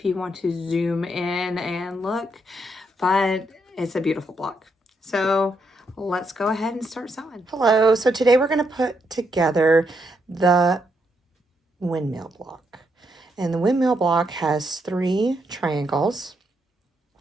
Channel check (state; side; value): normal; both; correlation 0.78